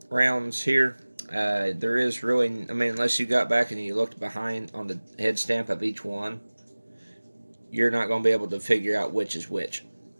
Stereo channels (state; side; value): inverted; both; correlation -1.00